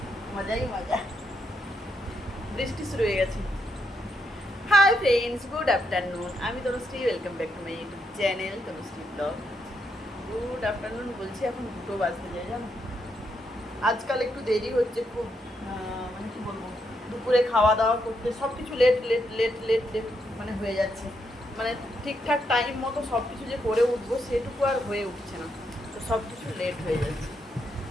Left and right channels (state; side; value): normal; both; correlation 0.79